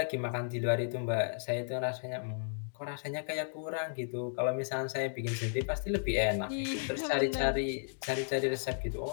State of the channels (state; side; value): silent; right; digital silence